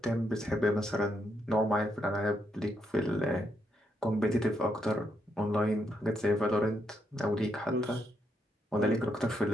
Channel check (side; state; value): both; normal; correlation 0.78